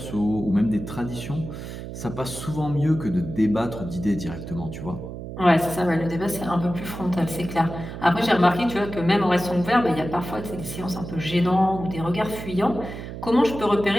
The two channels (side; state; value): right; noise; hum, 9 dB below the sound